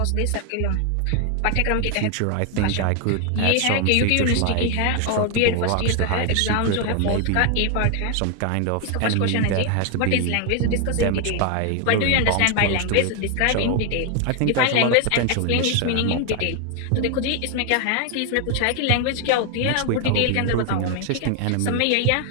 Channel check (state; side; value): different; both; correlation 0.00